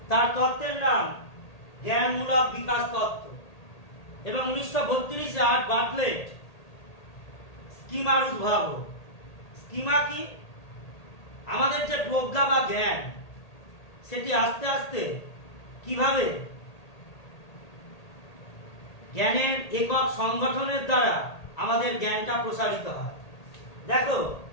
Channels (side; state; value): right; late; 1.8 ms